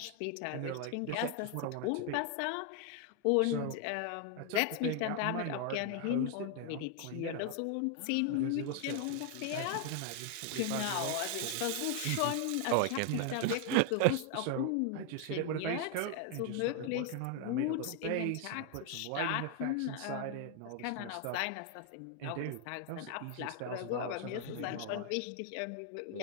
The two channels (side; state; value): both; different; correlation 0.00